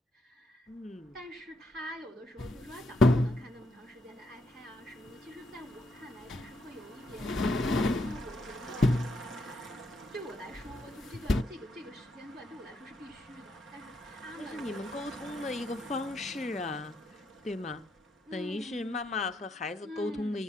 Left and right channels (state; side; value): normal; both; correlation 0.78